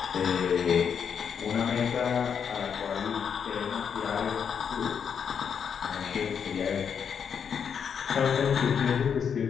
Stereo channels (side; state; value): right; quieter; 7.2 dB